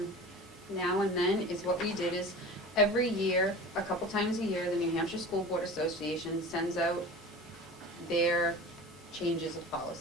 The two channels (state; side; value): normal; both; correlation 0.36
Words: and then, is what we did is, every year, a couple times a year, the New Hampshire School Board Association sends out their changes of